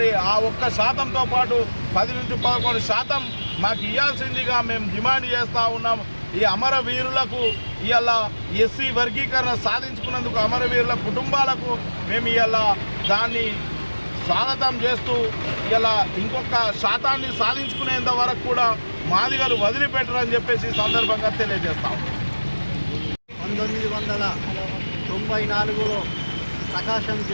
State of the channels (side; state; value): both; inverted; correlation -1.00